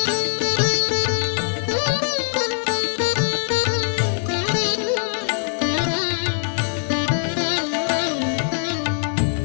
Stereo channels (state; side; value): silent; right; digital silence